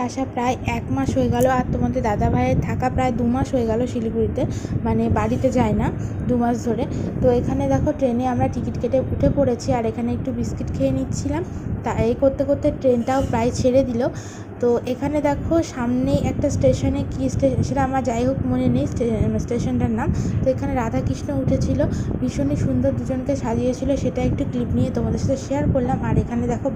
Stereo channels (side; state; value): both; identical; correlation 1.00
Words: আসা প্রায় 1 মাস হয়ে গেল, আর তোমাদের দাদা ভাইয়ের থাকা প্রায় 2 মাস হয়ে গেল শিলিগুড়িতে, মানে বাড়িতে যায় না 2 মাস ধরে। তো এখানে দেখো ট্রেনে আমরা টিকিট কেটে উঠে পড়েছি, আর এখানে একটু বিস্কিট খেয়ে নিচ্ছিলাম। তা এই করতে করতে ট্রেনটাও প্রায় ছেড়ে দিল। তো এখানে দেখো সামনেই একটা স্টেশনে, কি স্টেশন সেটা আমার যাই হোক মনে নেই স্টেশনটার নাম। তো এখানে রাধাকৃষ্ণ উঠেছিল, ভীষণই সুন্দর দুজনকে সাজিয়েছিল, সেটা একটু ক্লিপ নিয়ে তোমাদের সাথে শেয়ার করলাম। আর এখানে দেখো